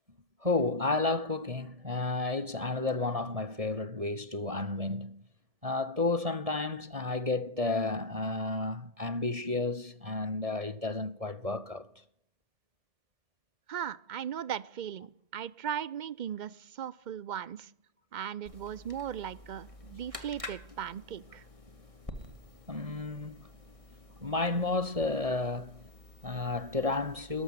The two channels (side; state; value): left; late; 1.6 ms